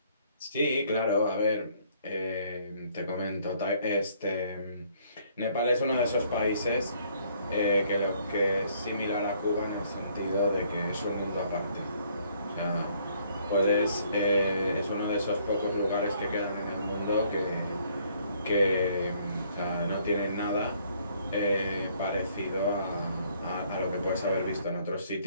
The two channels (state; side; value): inverted; both; correlation -0.64